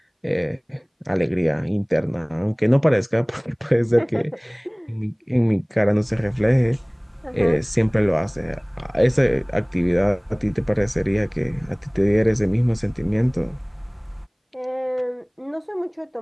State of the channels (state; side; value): identical; both; correlation 1.00